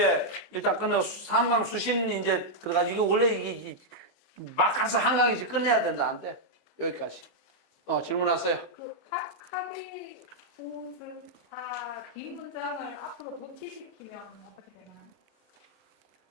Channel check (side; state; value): both; normal; correlation -0.04